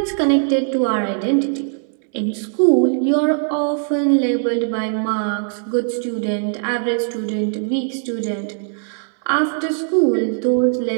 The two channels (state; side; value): silent; left; 66 dB below the other